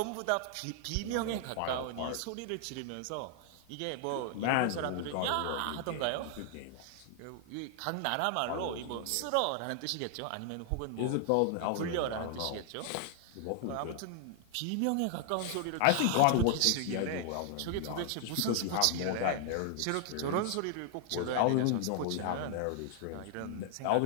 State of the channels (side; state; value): both; different; correlation 0.00